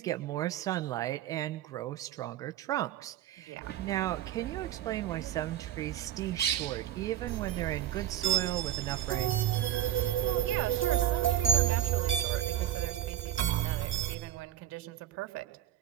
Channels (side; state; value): left; quieter; 11.9 dB